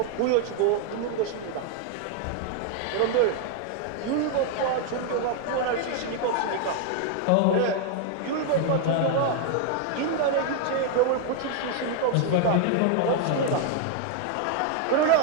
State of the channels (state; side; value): different; both; correlation 0.00